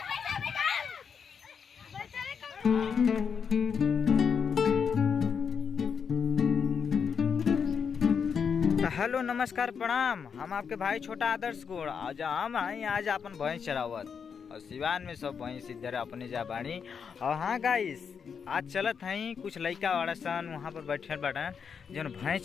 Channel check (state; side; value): quieter; right; 6.6 dB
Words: हेलो नमस्कार प्रणाम, हम आपके भाई छोटा आदर्श गुण आज हम आई आज अपन भैंस चरावत और सिवान में सब भैंस इधर अपने जा बाड़ी। और हाँ गाइस, आज चलत हैं कुछ लड़का वाला सन वहाँ पर बैठे बटन जो भैंस